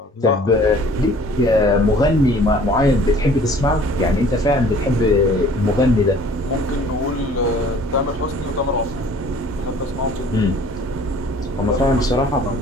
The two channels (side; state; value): both; normal; correlation 0.52